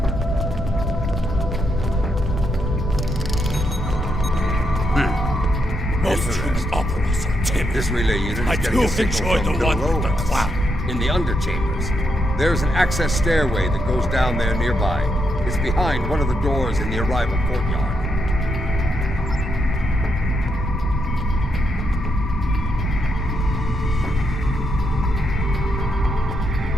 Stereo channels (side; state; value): both; normal; correlation 0.80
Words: Most human operas are timid. This relay unit is I getting do a signal enjoy from the one with the below us, cloud. in the underchambers. There's an access stairway that goes down there nearby. It's behind one of the doors in the arrival courtyard.